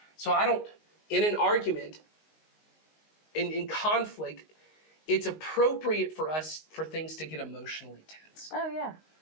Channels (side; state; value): right; late; 19 ms